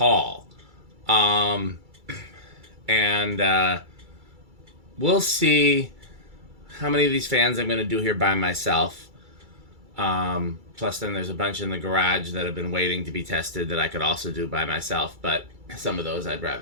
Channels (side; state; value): left; late; 2.3 ms